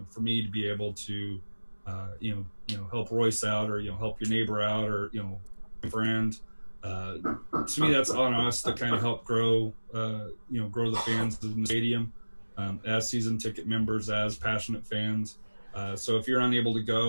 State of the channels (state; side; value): inverted; both; correlation -1.00